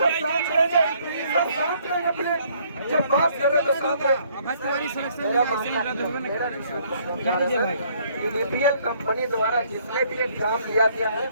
जब बात कर रहे तो TDPL कंपनी द्वारा जितने भी एग्जाम लिया गया है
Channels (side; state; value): both; inverted; correlation -0.64